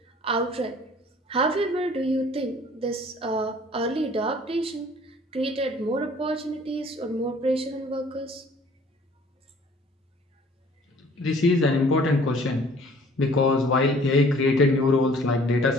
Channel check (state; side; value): normal; both; correlation 0.54